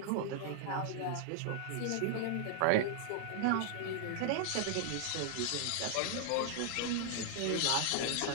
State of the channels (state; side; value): different; both; correlation -0.01